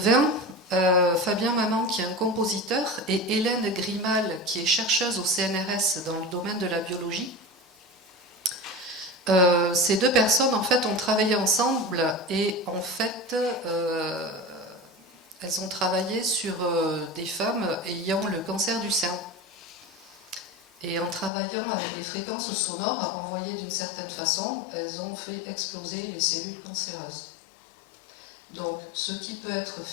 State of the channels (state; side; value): drops out; right; at 21.3 s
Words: Fabien Maman qui est un compositeur et Hélène Grimal qui est chercheuse au CNRS dans le domaine de la biologie. Ces deux personnes en fait ont travaillé ensemble et en fait elles ont travaillé sur des femmes ayant le cancer du sein. Et en travaillant avec des fréquences sonores envoyées d'une certaine façon, elles ont fait exploser les cellules cancéreuses. Donc, ce qui peut être